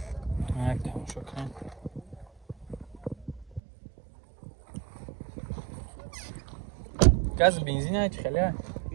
Як тамошо кунем. Газ бензин чи хали?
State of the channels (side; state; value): left; drops out; at 3.6 s